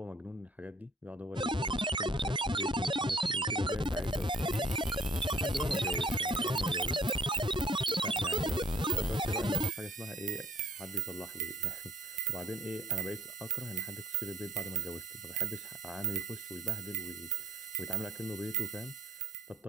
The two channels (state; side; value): normal; both; correlation 0.60